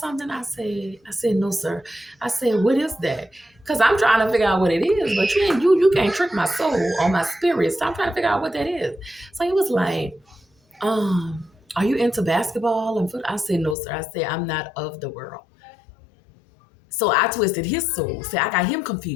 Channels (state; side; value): drops out; right; at 13.8 s